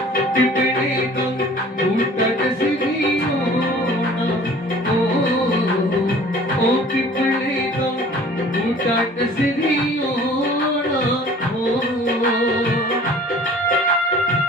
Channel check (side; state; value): both; normal; correlation 0.48